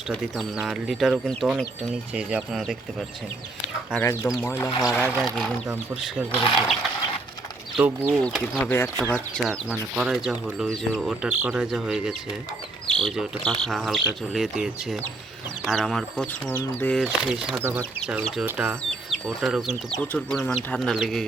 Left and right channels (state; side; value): quieter; left; 3.1 dB